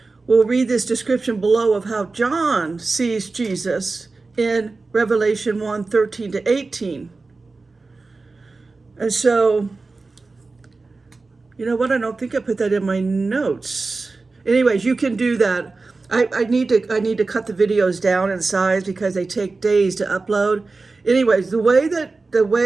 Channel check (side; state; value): left; quieter; 3.7 dB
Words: we'll read this description below of how John sees Jesus in Revelation 1:13-18. And so, you know what? I don't think I put that in my notes. Anyways, you can do that. I need to cut the videos down in size because they take days to upload. Anyways, the way,